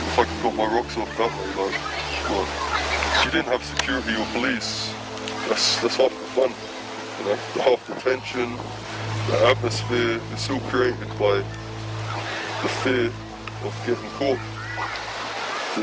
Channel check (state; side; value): identical; both; correlation 1.00